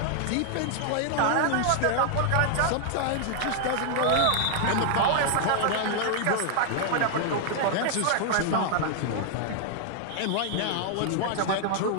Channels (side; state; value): both; different; correlation -0.01